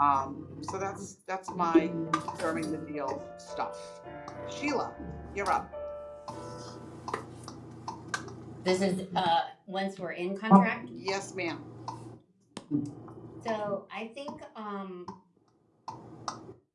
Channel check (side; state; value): both; identical; correlation 1.00